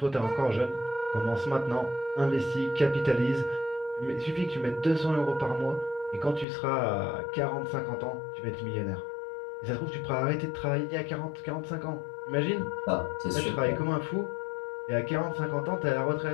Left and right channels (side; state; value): right; drops out; at 6.5 s